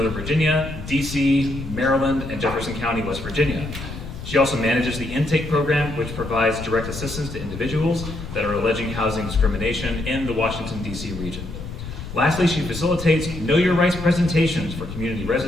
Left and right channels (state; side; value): noise; left; rumble, 10 dB below the sound